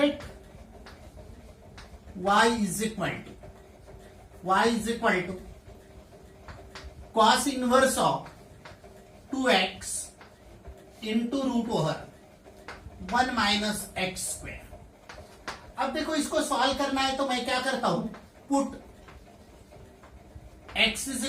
y is equal to cos inverse of 2x into root over 1 minus x square. अब देखो इसको सॉल्व करना है तो मैं क्या करता हूं, put x is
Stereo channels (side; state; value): both; identical; correlation 1.00